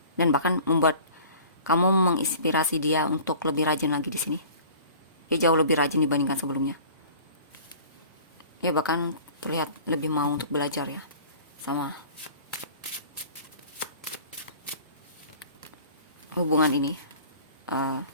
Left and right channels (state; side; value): inverted; both; correlation -0.45